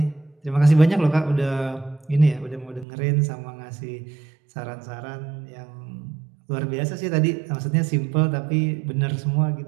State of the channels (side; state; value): left; drops out; at 2.9 s